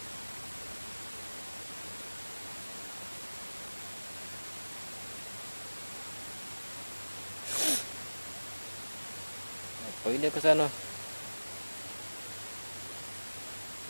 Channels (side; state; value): both; inverted; correlation -1.00